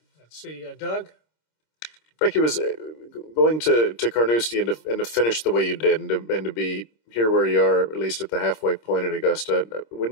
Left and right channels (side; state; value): right; late; 26 ms